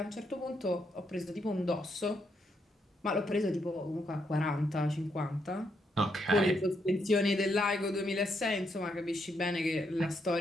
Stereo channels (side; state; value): both; normal; correlation 0.78